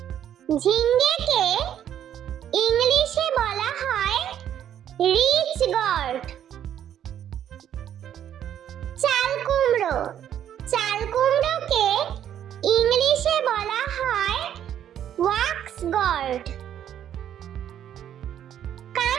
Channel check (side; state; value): left; quieter; 10.2 dB